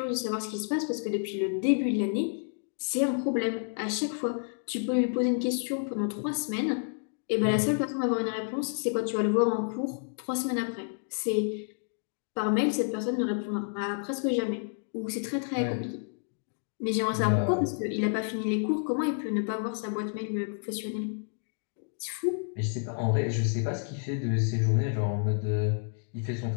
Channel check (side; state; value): right; silent; 58 dB below the other